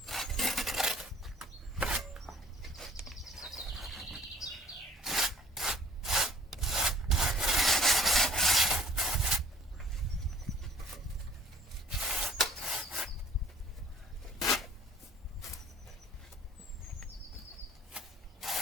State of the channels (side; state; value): both; normal; correlation 0.52